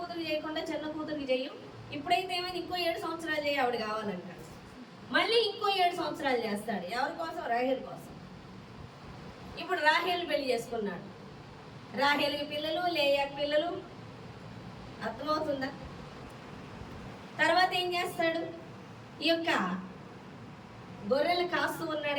చేయకుండా చిన్న కూతురికి చెయ్యం, ఇప్పుడైతే ఏమైంది ఇంకో 7 సంవత్సరాలు చేయి ఆవిడ కావాలంటాడు. మళ్ళీ ఇంకో 7 సంవత్సరాలు చేస్తాడు. ఎవరి కోసం? రాహేల్ కోసం. ఇప్పుడు రాహేల్ పెళ్లి చేసుకున్నాడు. రాహేల్కి పిల్లలు, లేయాకి పిల్లలు. అర్థమవుతుందా? తర్వాత ఏం చేస్తాడు? ఈ యొక్క గొర్రెలు కాస్తూ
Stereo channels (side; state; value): both; identical; correlation 1.00